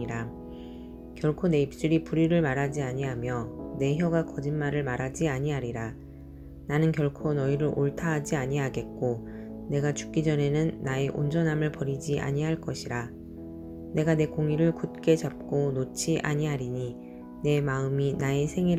결코 내 입술이 불의를 말하지 아니하며 내 혀가 거짓말을 말하지 아니하리라. 나는 결코 너희를 옳다 하지 아니하겠고 내가 죽기 전에는 나의 온전함을 버리지 아니할 것이라. 내가 내 공의를 굳게 잡고 놓지 아니하리니 내 마음이 나의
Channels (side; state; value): both; identical; correlation 1.00